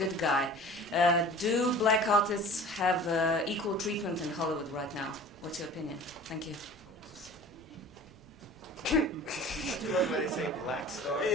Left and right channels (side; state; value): right; noise; rumble, 26 dB below the sound